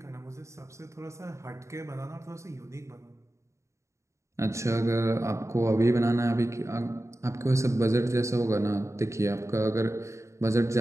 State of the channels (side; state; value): left; late; 0.14 ms